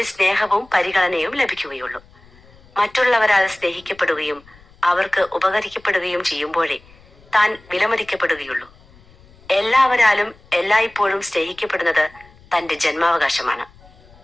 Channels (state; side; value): noise; left; rumble, 26 dB below the sound